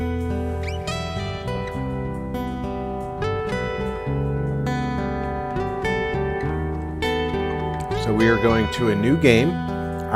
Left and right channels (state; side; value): identical; both; correlation 1.00